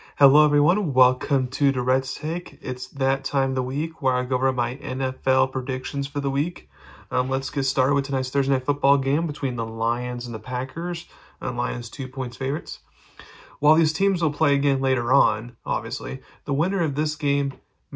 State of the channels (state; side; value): identical; both; correlation 1.00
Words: Hello everyone, welcome to Durrett's Take. It's that time of the week where I go over my NFL predictions for the week. Let's get started with tonight's Thursday Night Football game between the Lions and the Packers. Lions 2 points favorites. While these teams will play again later on, obviously, the winner of this game